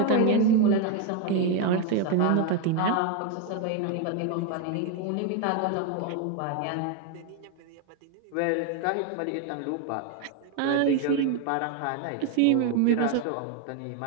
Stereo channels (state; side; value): different; both; correlation 0.01